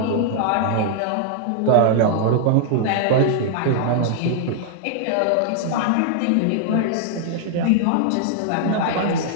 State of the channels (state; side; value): different; both; correlation 0.00